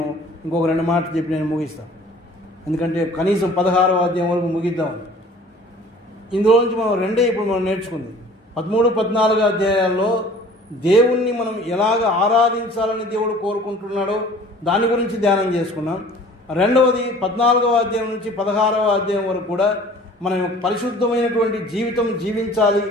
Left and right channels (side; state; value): both; normal; correlation 0.49